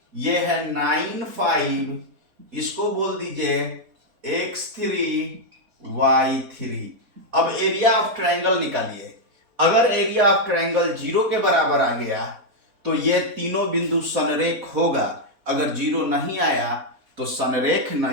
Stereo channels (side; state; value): left; late; 3.9 ms